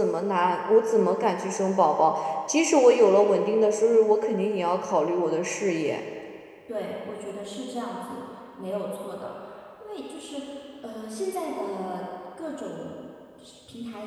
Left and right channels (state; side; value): identical; both; correlation 1.00